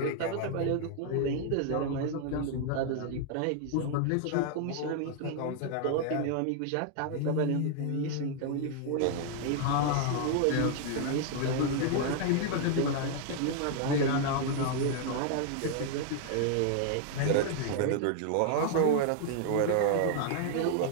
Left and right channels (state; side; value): different; both; correlation 0.00